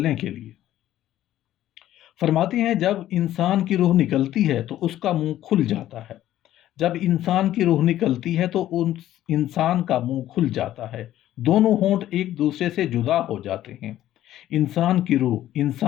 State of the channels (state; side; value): quieter; right; 13.1 dB